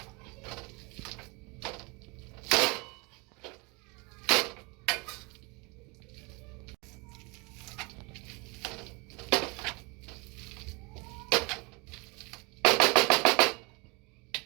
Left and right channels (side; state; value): left; quieter; 28.5 dB